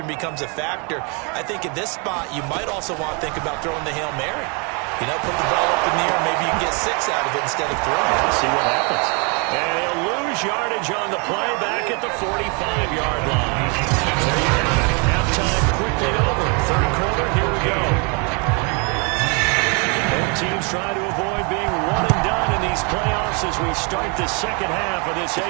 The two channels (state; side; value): quieter; left; 33.8 dB